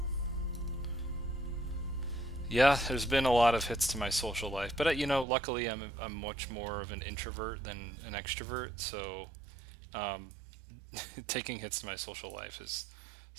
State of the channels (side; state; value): left; drops out; at 5.2 s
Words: Yeah, there's been a lot of hits to my social life, but you know, luckily I'm much more of an introvert than an extrovert, so um, taking hits to my social life is